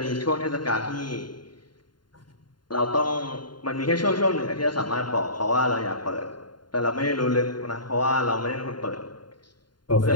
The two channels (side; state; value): right; late; 0.71 ms